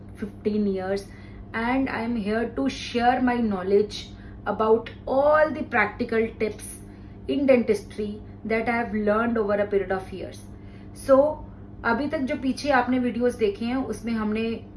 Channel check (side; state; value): both; identical; correlation 1.00